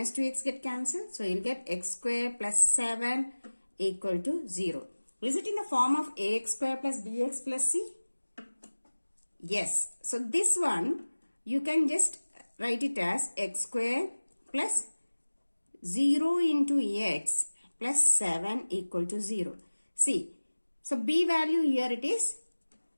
2x get cancelled. So you will get x square plus 7 equal to 0. Is it in the form of ax square plus bx plus c? Yes. So this one you can just write it as x square plus 0 into x plus 7 equal to 0. See, so b value here it is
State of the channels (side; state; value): both; inverted; correlation -1.00